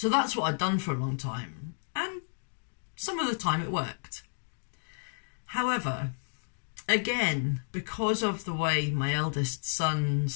that's what I'd done for a long time. And some of the time it worked. However, again, because of the way my eldest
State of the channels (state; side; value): silent; right; digital silence